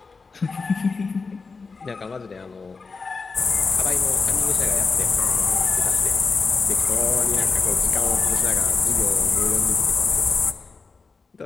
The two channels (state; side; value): quieter; right; 4.5 dB